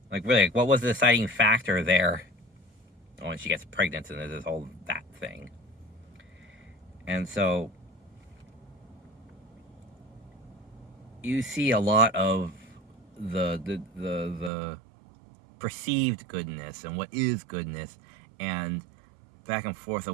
like really, what was the deciding factor there? When she gets pregnant and there's this whole that thing. And so you see a lot of the perceived goodness and what is goodness, and back and forth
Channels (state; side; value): drops out; left; at 14.5 s